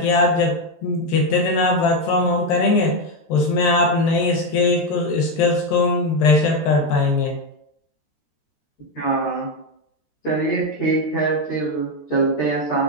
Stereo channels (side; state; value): right; late; 13 ms